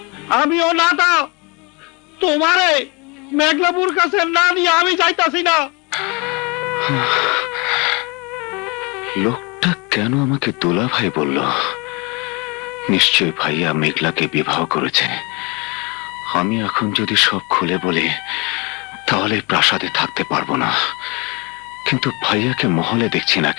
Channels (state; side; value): quieter; right; 28.5 dB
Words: আমিও না তা তোমারে মেঘলাপুর কাছে না নিয়ে আমি যাইতাছি না। লোকটা কেন আমাকে দোলা ভাই বলল? নিশ্চয় ভাইয়া মেঘলাকে বিবাহ করেছে। আমি এখন যদি সব খুলে বলি তাহলে প্রাসাদে থাকতে পারবো না। কিন্তু ভাইয়াকে মহলে দেখছি না